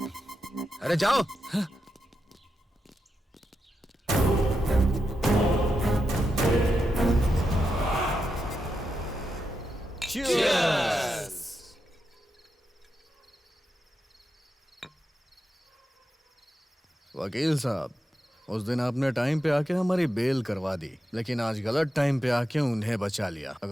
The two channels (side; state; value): both; normal; correlation 0.87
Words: अरे जाओ। वकील साहब, उस दिन आपने टाइम पे आके हमारी बेल करवा दी, लेकिन आज गलत टाइम पे आके उन्हें बचा लिया।